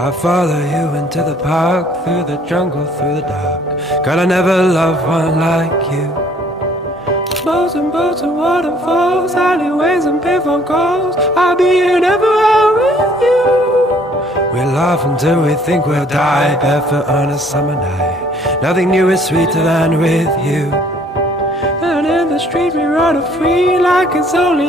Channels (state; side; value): normal; both; correlation 0.59